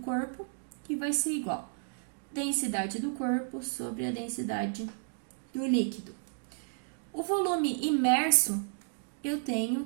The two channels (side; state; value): left; silent; digital silence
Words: que vai ser igual a densidade do corpo sobre a densidade do líquido. O volume imerso, eu tenho